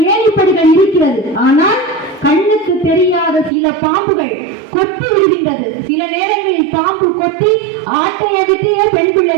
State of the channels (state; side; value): drops out; left; at 3.5 s